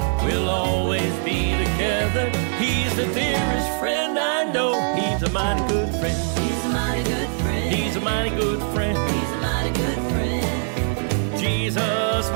we'll always be together. He's the dearest friend I know. He's a mighty good friend. He's a mighty good friend. He's a mighty good friend. He's a mighty good friend. Jesus,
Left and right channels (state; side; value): silent; left; digital silence